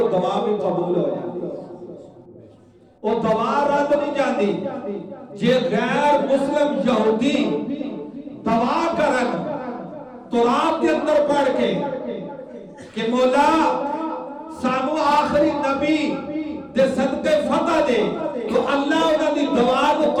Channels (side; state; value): both; identical; correlation 1.00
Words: دعا بھی قبول ہو جاتی، وہ دعا رد نہیں جاتی۔ جے غیر مسلم یہودی دعا کرن تراب دے اندر پڑھ کے کہ مولا سانو آخری نبی دے صدقے فتح دے، تو اللہ انہاں دی دعا کو